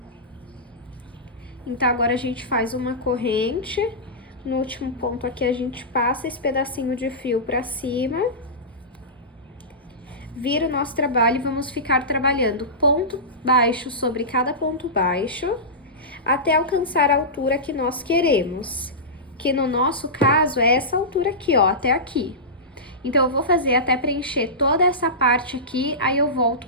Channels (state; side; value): normal; both; correlation -0.17